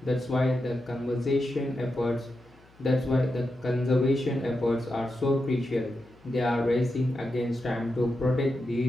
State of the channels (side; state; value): left; noise; hum, 28 dB below the sound